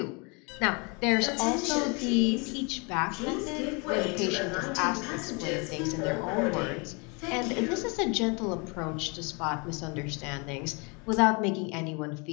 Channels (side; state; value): right; quieter; 31.1 dB